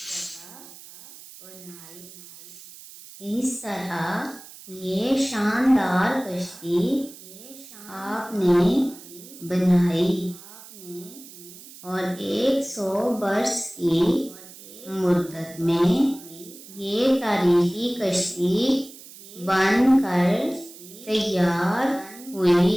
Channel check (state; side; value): noise; right; hiss, 18 dB below the sound